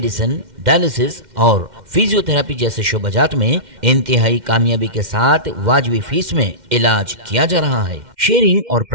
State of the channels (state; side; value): late; left; 2.1 ms